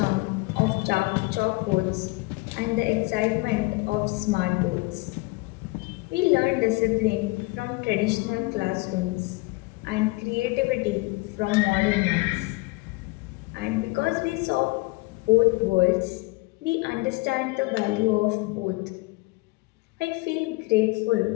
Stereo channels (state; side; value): quieter; right; 24.5 dB